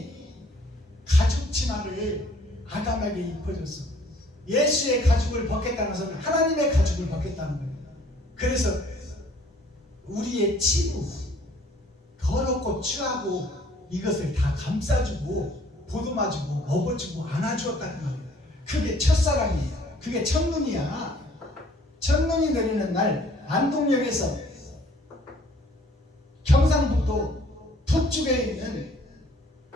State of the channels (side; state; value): both; normal; correlation 0.58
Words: 가죽 치마를 아담에게 입혀줬어. 예수의 가죽을 벗겠다는 것은 하나님의 가죽을 벗겠다는 거예요. 그래서 우리의 치부, 더럽고 추하고 이것을 다 감싸주고 보듬어주고 먹어주고 안아주었다는 말이에요. 그게 첫사랑이에요. 그게 첫눈이야. 첫눈이 내리는 날 안동역에서 경상북도 북쪽에 있는